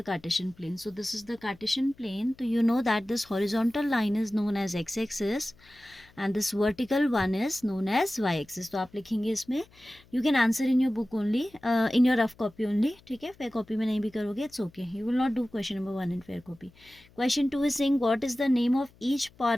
Cartesian plane? So this is the Cartesian plane. So you know that this horizontal line is known as x-axis and this vertical one is known as y-axis. तो आप लिखेंगे इसमें, you can answer in your book only, in your rough copy only. ठीक है, fair copy में नहीं भी करोगे, it's okay. You will not do question number 1 in fair copy. Question 2 is saying, what is the name of each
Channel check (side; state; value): left; noise; hum, 28 dB below the sound